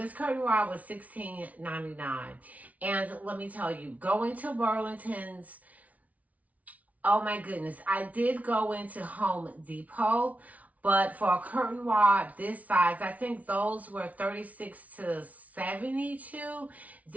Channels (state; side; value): late; left; 0.070 ms